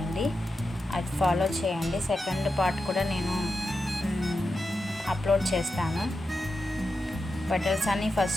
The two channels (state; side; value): normal; both; correlation 0.89